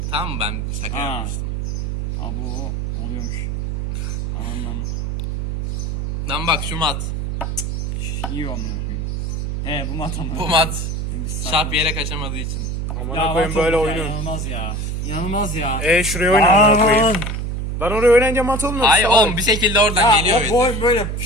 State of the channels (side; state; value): right; noise; hum, 2 dB below the sound